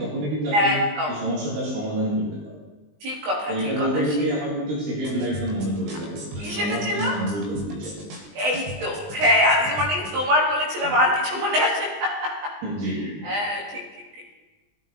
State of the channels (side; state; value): left; late; 20 ms